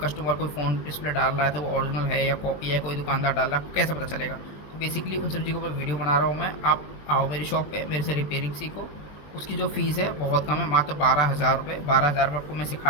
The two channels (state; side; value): late; right; 20 ms